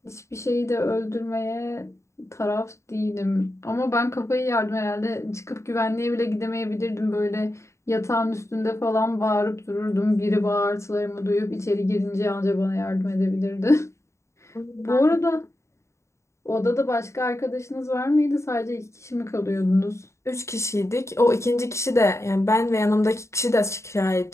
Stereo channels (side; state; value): right; late; 0.14 ms